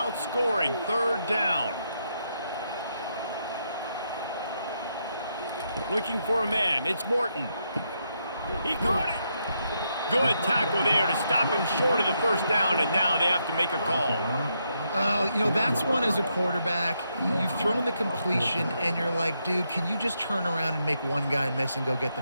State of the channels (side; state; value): both; inverted; correlation -0.80